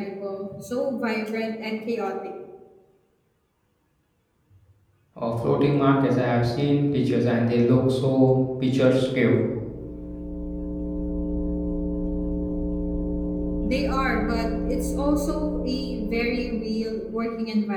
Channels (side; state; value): both; identical; correlation 1.00